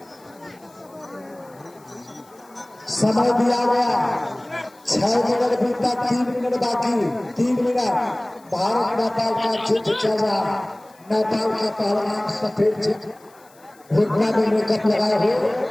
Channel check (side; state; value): left; noise; hiss, 29 dB below the sound